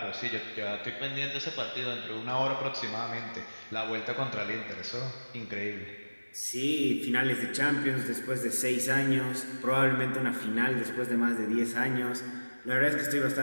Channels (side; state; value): both; inverted; correlation -1.00